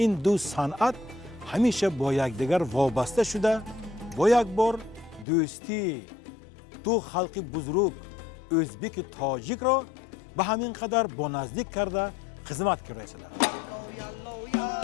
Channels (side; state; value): right; drops out; at 5.2 s